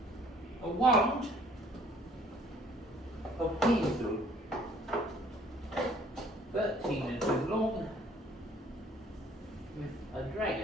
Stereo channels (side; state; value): both; normal; correlation 0.57